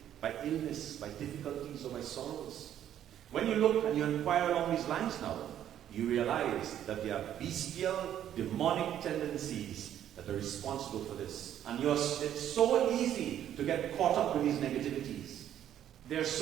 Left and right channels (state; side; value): quieter; left; 10.8 dB